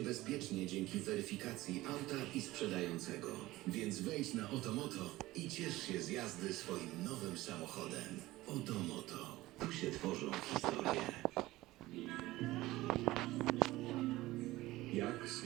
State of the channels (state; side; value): quieter; left; 17.8 dB